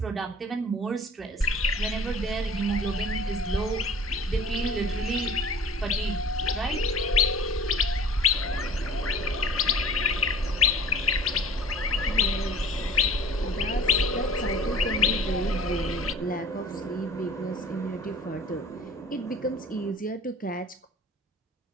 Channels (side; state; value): both; normal; correlation 0.46